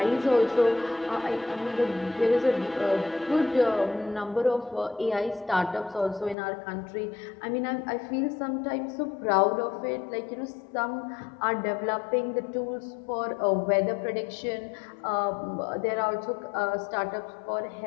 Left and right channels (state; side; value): drops out; right; at 6.4 s